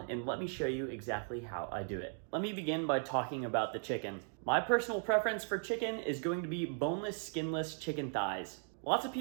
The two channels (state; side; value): silent; left; 53 dB below the other